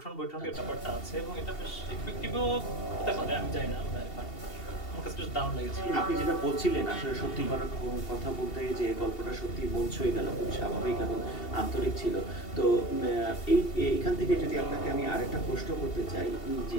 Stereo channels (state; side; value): late; right; 2.7 ms